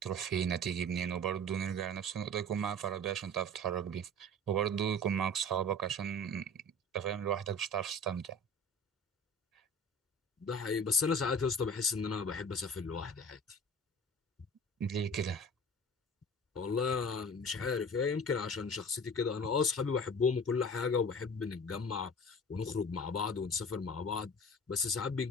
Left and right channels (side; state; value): both; normal; correlation 0.40